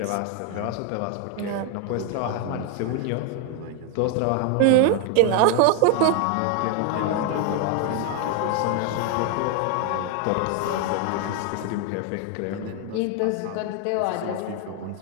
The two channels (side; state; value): both; different; correlation 0.01